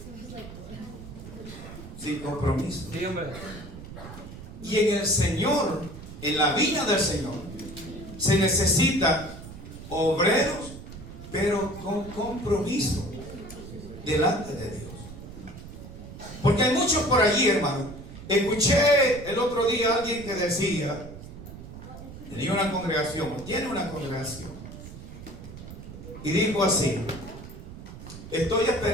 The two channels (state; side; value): noise; right; rumble, 13 dB below the sound